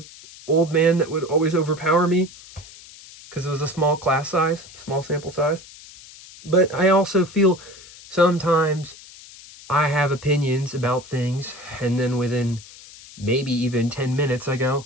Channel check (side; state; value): left; noise; hiss, 19 dB below the sound